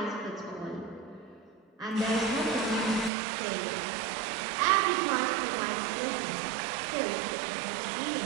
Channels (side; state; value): left; drops out; at 3.1 s